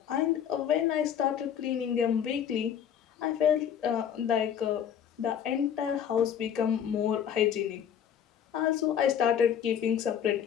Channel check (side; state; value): right; quieter; 8.9 dB